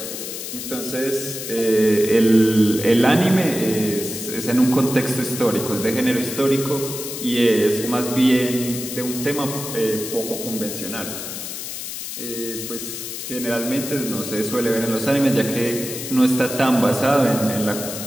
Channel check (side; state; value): left; noise; hiss, 7 dB below the sound